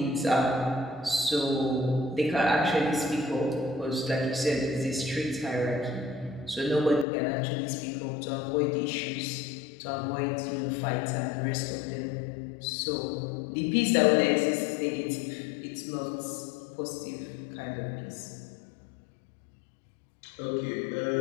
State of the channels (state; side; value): drops out; right; at 7.1 s